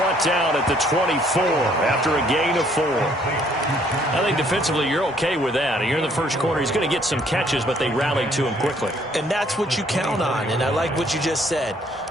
down at the 24 after a gain of 4. I think defensively you're okay with that. You're in the first quarter. He's going to get some catches, but they rallied to him quickly. And that's what you count on, and I like what you just said.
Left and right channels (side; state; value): both; normal; correlation 0.64